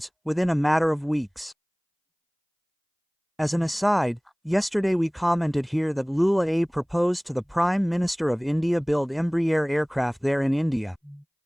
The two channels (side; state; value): both; identical; correlation 1.00